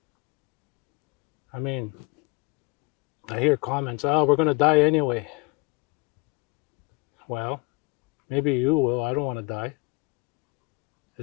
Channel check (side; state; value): right; quieter; 25.9 dB